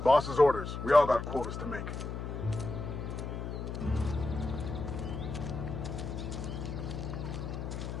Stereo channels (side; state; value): left; noise; hum, 5 dB below the sound